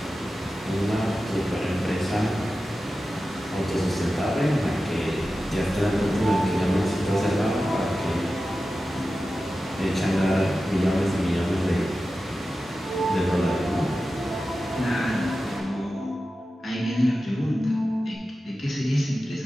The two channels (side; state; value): both; normal; correlation 0.93